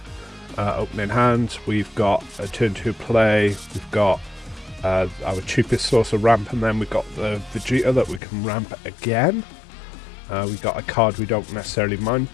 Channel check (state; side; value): drops out; right; at 8.2 s